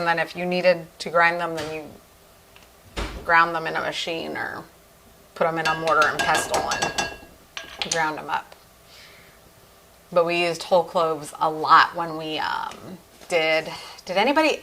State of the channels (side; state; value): both; identical; correlation 1.00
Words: then if you needed to grind them, then you ground them in a machine or put them in a mortar and pestle and ground them up. But we used whole cloves a lot when we did anybody